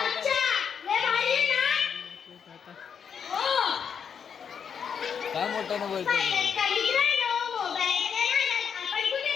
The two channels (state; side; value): quieter; right; 7.2 dB